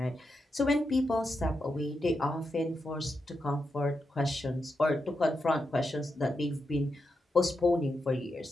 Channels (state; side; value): normal; both; correlation 0.86